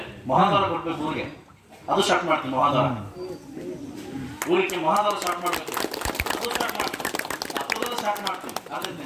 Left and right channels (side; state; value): both; identical; correlation 1.00